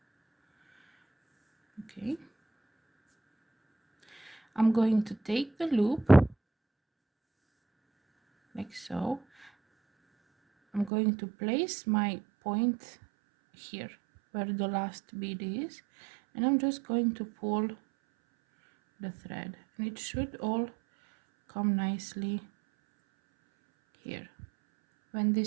Okay, I'm going to take the loop like so. I'm going to place my point here where the last bead is, and I'm just going to pull the thread, and it should all come nicely here. When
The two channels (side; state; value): left; drops out; at 10.9 s